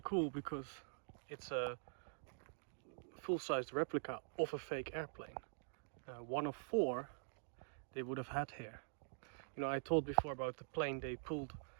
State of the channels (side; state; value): left; silent; digital silence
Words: cool because it's a full-sized replica of a fake airplane. One of 4 they would have had here. You know, I told before about the plane they pulled